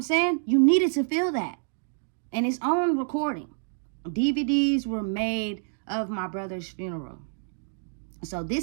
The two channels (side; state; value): left; silent; digital silence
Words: saying? You needed to feel that. And it's on recording. DVDs were made of my brother's funeral. So